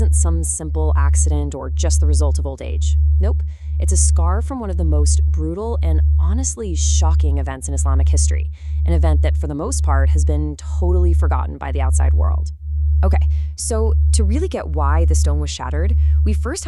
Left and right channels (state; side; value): identical; both; correlation 1.00